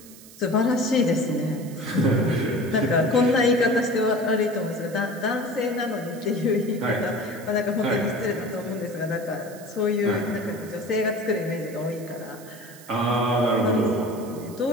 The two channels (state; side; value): noise; right; hiss, 20 dB below the sound